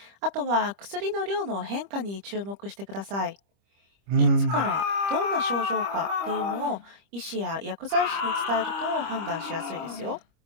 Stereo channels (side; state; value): left; late; 25 ms